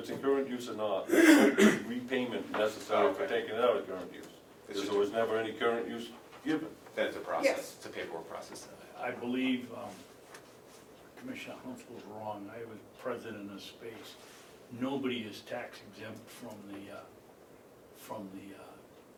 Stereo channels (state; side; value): identical; both; correlation 1.00